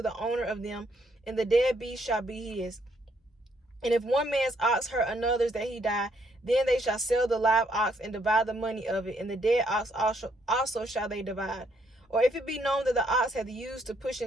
the owner of them, and the dead beast shall be his. And if one man's ox hurt another's that he die, then they shall sell the live ox and divide the money of it, and the dead ox also shall they divide. Or if it be known that the ox hath used to push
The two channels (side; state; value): both; normal; correlation 0.71